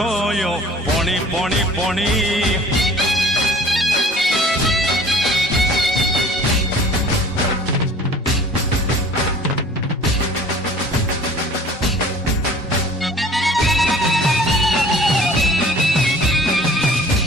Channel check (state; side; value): normal; both; correlation 0.49